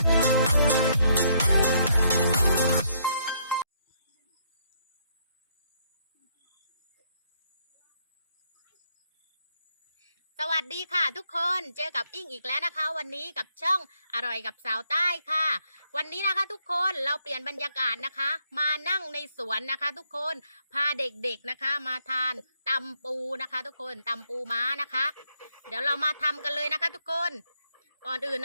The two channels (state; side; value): inverted; both; correlation -0.72